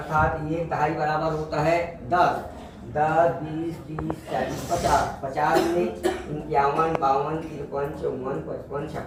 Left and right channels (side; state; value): both; identical; correlation 1.00